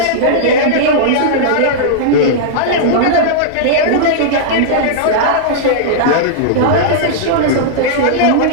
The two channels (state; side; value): different; both; correlation -0.02